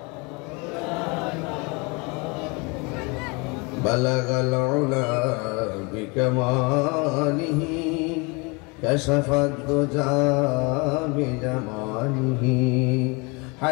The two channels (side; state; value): right; quieter; 29.1 dB